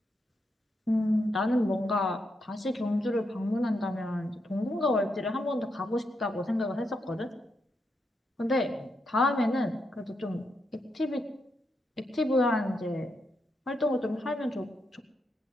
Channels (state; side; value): normal; both; correlation 0.82